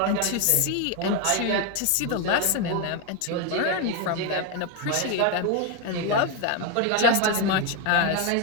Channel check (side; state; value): both; different; correlation 0.02